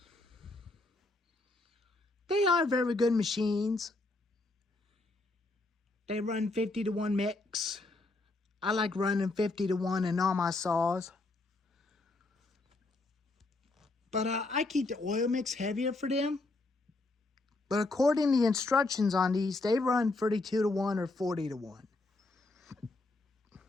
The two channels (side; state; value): right; quieter; 3.1 dB